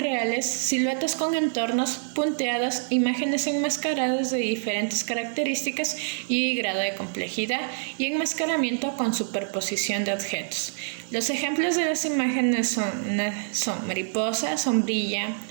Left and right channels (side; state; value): left; silent; 61 dB below the other